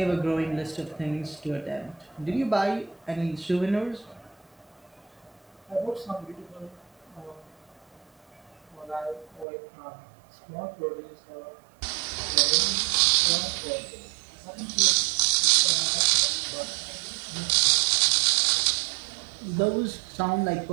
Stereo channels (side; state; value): left; drops out; at 9.5 s